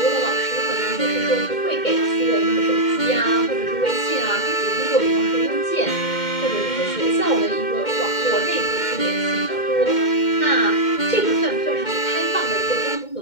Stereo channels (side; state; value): right; late; 2.1 ms